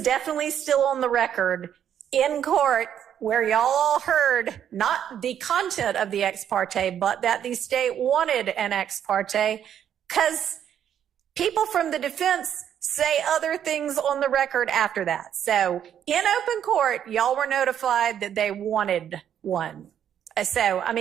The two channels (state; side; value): quieter; left; 9.5 dB